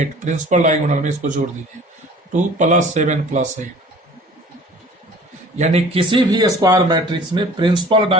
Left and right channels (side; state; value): both; normal; correlation 0.47